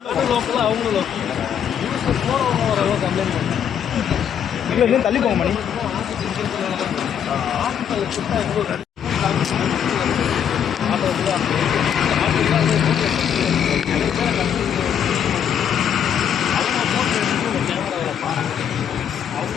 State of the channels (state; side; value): quieter; right; 8.6 dB